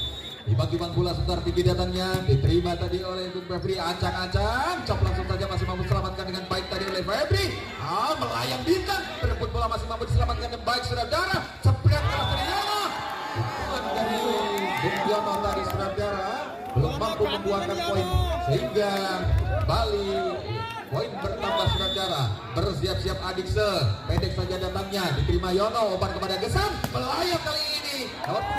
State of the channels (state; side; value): identical; both; correlation 1.00